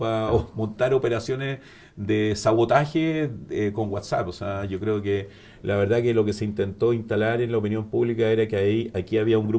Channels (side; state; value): both; identical; correlation 1.00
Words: montar operaciones de sabotaje con WhatsApp. O sea, yo creo que la verdad que lo que se intentó instalar en la opinión pública era que aquí había un